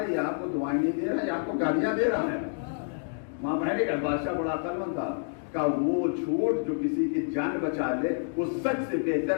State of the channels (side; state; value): right; silent; digital silence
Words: یہ آپ کو دعائیں نہیں دے رہا، یہ آپ کو گالیاں دے رہا ہے. ماں بہن کا بادشاہ بڑا عقلمند تھا. کہا وہ جھوٹ جو کسی کی جان بچا لے وہ سچ سے